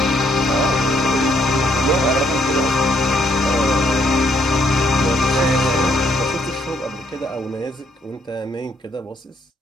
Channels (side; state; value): both; normal; correlation 0.70